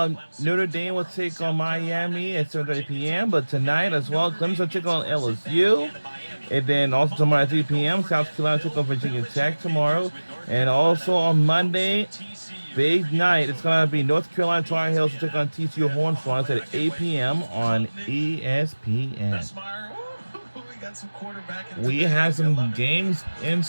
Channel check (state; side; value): inverted; both; correlation -1.00